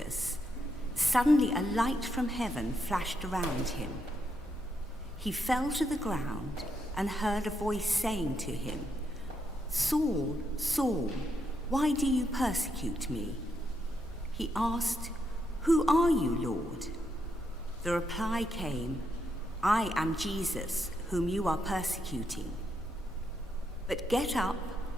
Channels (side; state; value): both; normal; correlation 0.80